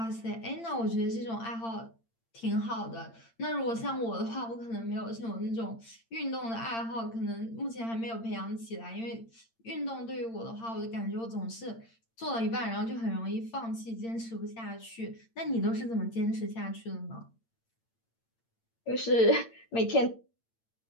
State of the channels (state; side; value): late; right; 8.8 ms